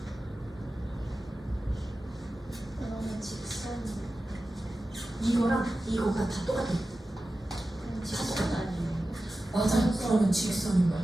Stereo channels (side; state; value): both; normal; correlation 0.94